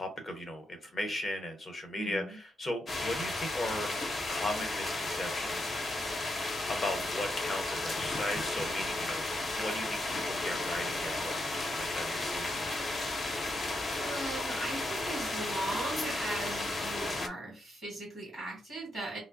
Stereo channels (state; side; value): normal; both; correlation 0.83